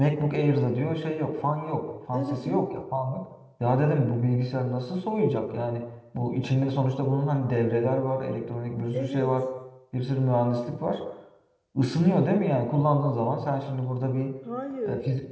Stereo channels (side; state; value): both; identical; correlation 1.00